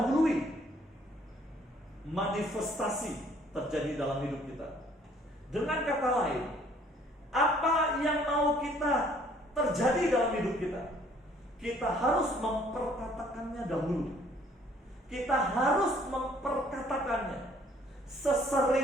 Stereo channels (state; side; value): normal; both; correlation 0.60